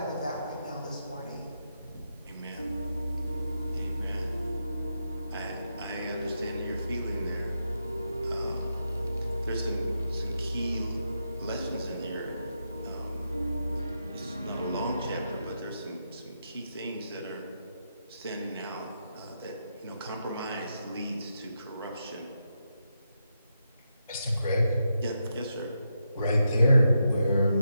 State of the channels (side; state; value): both; inverted; correlation -0.84